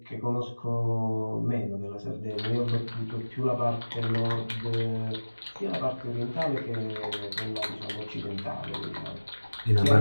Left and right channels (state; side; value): inverted; both; correlation -1.00